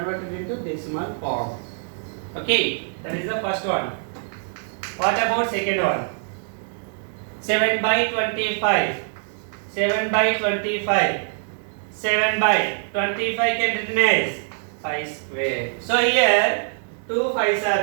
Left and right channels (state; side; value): silent; left; digital silence